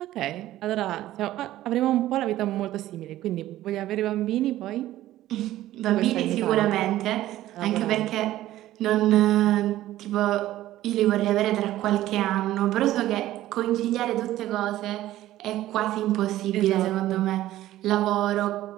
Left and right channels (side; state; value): left; quieter; 14.5 dB